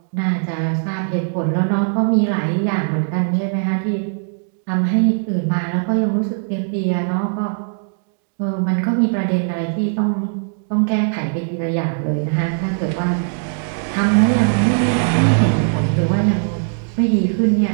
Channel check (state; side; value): silent; left; digital silence